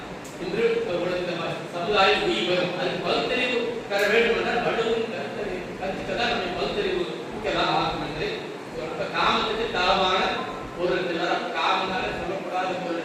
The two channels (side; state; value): both; identical; correlation 1.00